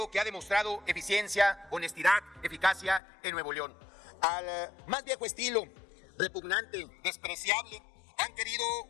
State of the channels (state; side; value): drops out; right; at 3.0 s